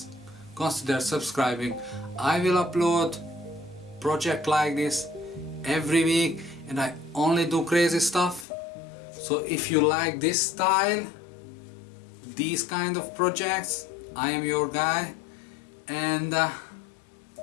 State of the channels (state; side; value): drops out; right; at 8.5 s